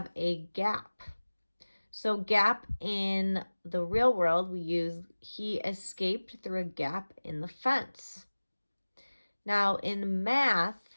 a gap. So gap in the real world, we use he escaped through a gap in the fence. Now in math,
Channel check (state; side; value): inverted; both; correlation -1.00